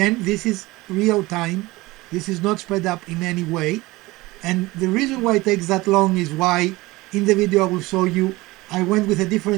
this is real time. This is not sped up in any way. And the reason why it takes that long is why in the video I will show you I went with a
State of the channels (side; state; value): left; quieter; 20.5 dB